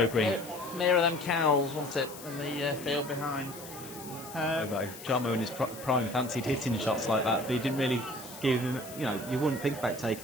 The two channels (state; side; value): noise; left; hiss, 15 dB below the sound